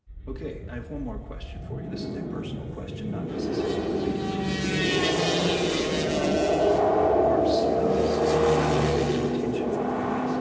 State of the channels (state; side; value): identical; both; correlation 1.00